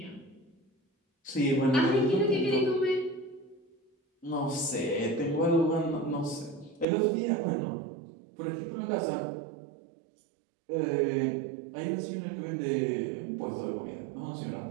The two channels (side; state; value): left; drops out; at 6.9 s